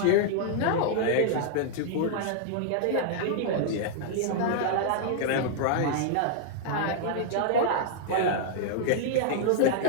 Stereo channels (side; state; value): both; different; correlation -0.01